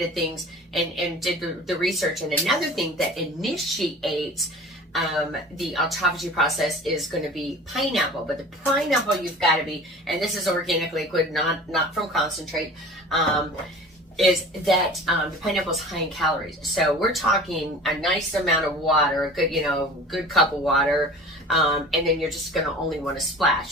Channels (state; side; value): normal; both; correlation 0.41